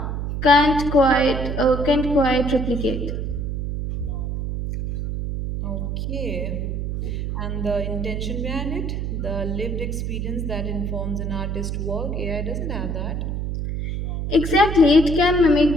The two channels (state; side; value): noise; right; hum, 3 dB below the sound